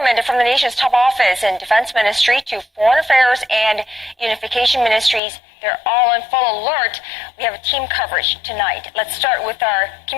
from the nation's top office and defense ministry to foreign affairs and unification ministries, they're all in full alert. We have a team coverage tonight. Let's start with our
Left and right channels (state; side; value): drops out; right; at 5.2 s